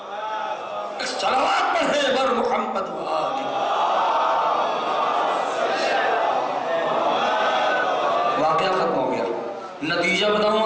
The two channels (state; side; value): identical; both; correlation 1.00